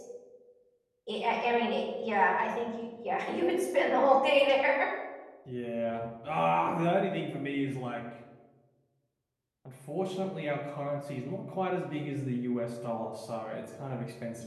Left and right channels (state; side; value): identical; both; correlation 1.00